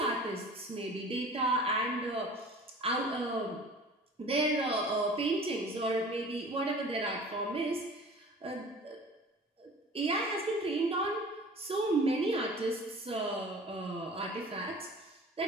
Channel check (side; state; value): both; normal; correlation 0.43